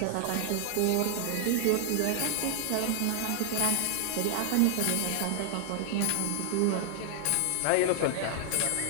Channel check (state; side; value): different; both; correlation -0.01